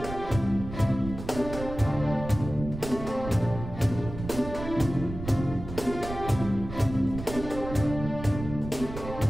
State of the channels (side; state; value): right; noise; rumble, 10 dB below the sound